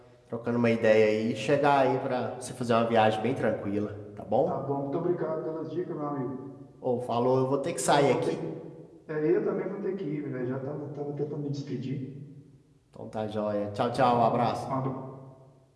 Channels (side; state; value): both; identical; correlation 1.00